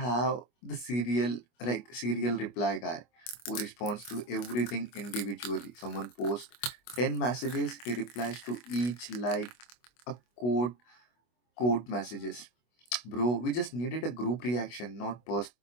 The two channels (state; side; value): late; right; 25 ms